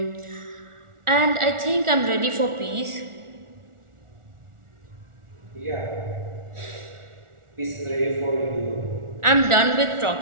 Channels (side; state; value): left; late; 1.4 ms